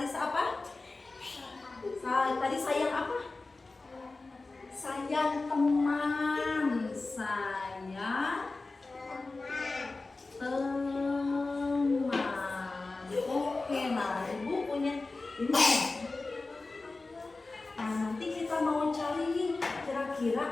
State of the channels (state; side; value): quieter; right; 3.5 dB